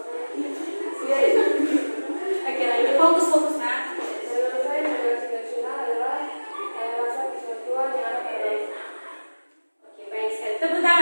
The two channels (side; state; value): both; inverted; correlation -1.00